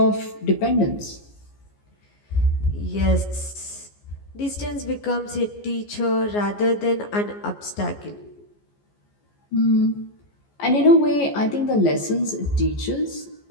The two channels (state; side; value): late; right; 14 ms